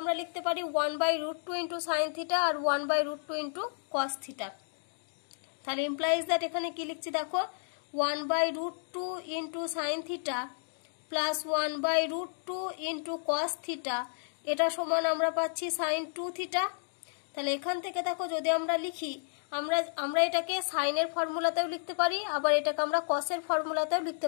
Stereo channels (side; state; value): right; silent; digital silence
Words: লিখতে পারি 1/√2 ইন্টু সাইন থিটা আর 1/√2 ইন্টু কস থিটা। তাহলে ইমপ্লাইজ দ্যাট এখানে কি লিখছি দেখো, 1/√2 into sine theta plus 1/√2 into cos theta, এটা সমান আমরা পাচ্ছি সাইন 2 থিটা। তাহলে এখান থেকে দেখো যদি আমরা লিখি, আমরা এটাকে সাইনের ফর্মুলাতেও লিখতে পারি, আবার এটাকে আমরা কসের ফর্মুলাতেও লিখতে